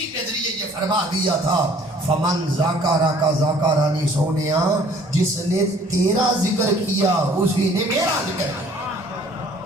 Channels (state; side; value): normal; both; correlation 0.55